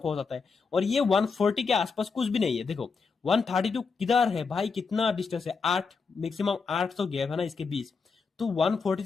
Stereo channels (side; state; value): right; quieter; 5.0 dB